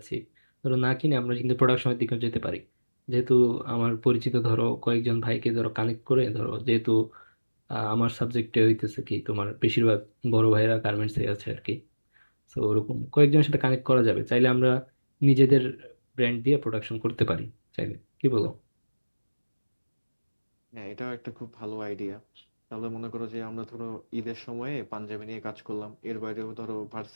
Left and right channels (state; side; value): inverted; both; correlation -1.00